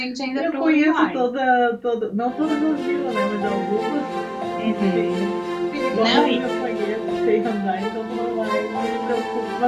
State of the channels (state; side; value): identical; both; correlation 1.00